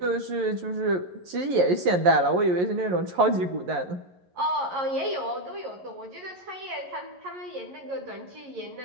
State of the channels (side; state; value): left; late; 11 ms